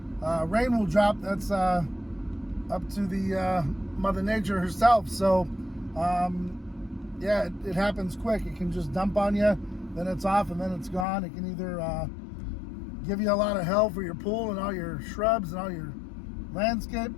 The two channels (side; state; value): right; drops out; at 11.1 s